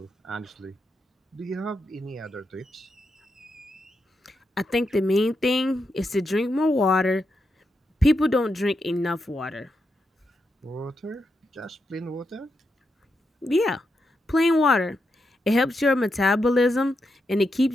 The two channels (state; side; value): normal; both; correlation 0.85